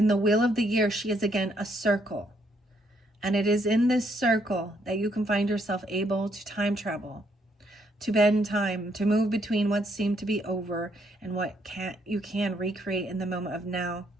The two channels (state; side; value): normal; both; correlation 0.72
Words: the wheel of the year, she is again a circle. And it is in this circle that you can find yourself able to time travel, to bend time, to move between what seemed to be over and what you can recreate in the moment of now.